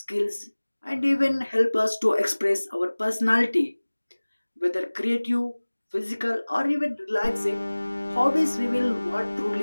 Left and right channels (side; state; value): both; inverted; correlation -1.00